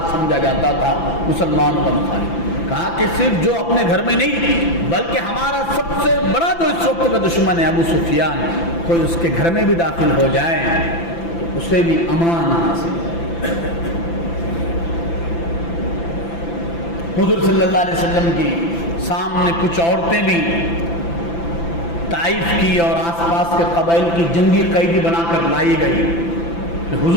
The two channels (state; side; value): late; right; 5.9 ms